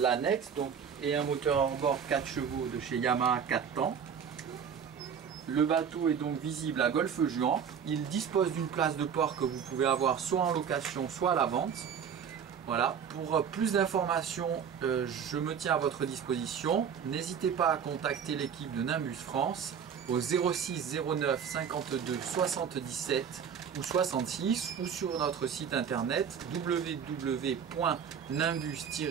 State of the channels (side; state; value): left; quieter; 7.5 dB